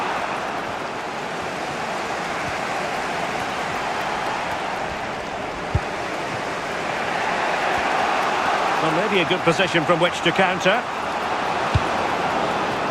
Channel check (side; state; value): both; identical; correlation 1.00